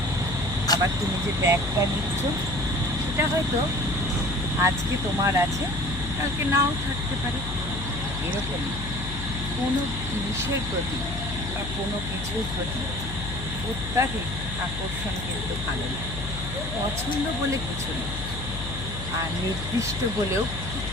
আবার তুমি যে ব্যাগটা নিচ্ছ সেটা হয়তো আজকে তোমার আছে, কালকে নাও থাকতে পারে। এরকমই কোনো জিনিসের প্রতি বা কোনো কিছুর প্রতি অত্যাধিক আকর্ষণ কিন্তু ভালো না। পছন্দ বলে কিছু নেই, আর নির্দিষ্ট বলেও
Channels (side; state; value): left; noise; hum, 7 dB below the sound